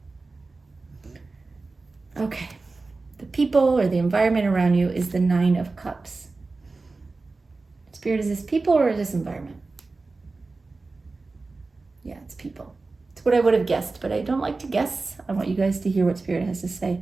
Okay. The people or the environment around you is the 9 of Cups. Spirit, is this people or is this environment? Yeah, it's people. It's what I would have guessed, but I don't like to guess. I want you guys to hear what Spirit has to say.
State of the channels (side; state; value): left; quieter; 3.7 dB